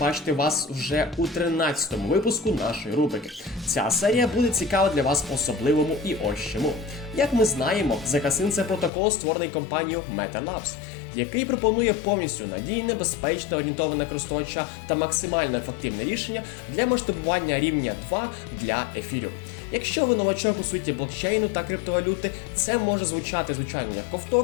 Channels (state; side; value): drops out; right; at 8.9 s